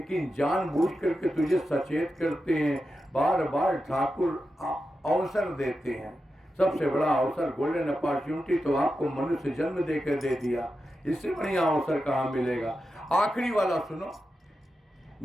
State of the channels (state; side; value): normal; both; correlation 0.90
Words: जानबूझ करके तुझे सचेत करते हैं। बार बार ठाकुर अवसर देते हैं। सबसे बड़ा अवसर गोल्डन अपॉर्चुनिटी तो आपको मनुष्य जन्म देकर दे दिया, इससे बढ़िया अवसर कहाँ मिलेगा। आखिरी वाला सुनो,